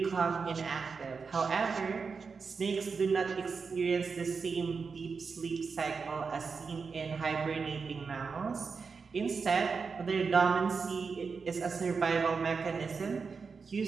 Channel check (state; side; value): quieter; left; 5.1 dB